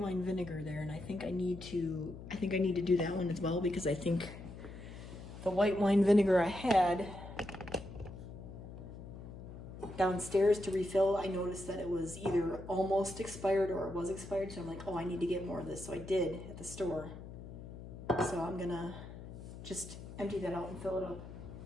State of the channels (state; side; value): noise; left; hum, 12 dB below the sound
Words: vinegar there, and I think I need to do that one as well, because I think the white wine vinegar I had downstairs to refill, I noticed that it was either almost expired or it was expired. So I'm like, oh, I need to get more of this. So I did at the store. So I'm gonna just empty that out and fill it up.